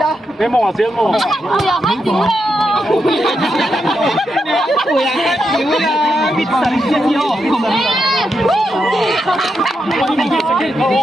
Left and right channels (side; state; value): both; normal; correlation 0.84